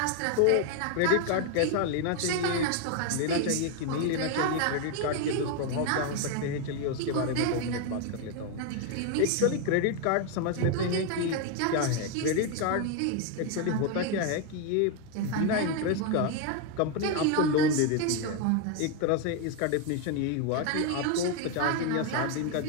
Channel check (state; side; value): different; both; correlation 0.01